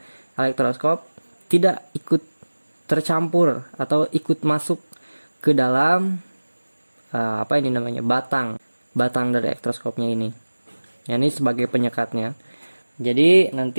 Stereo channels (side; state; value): both; inverted; correlation -1.00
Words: elektroskop tidak ikut tercampur atau ikut masuk ke dalam apa ini namanya, batang dari elektroskopnya ini. Ya, ini sebagai penyekatnya. Jadi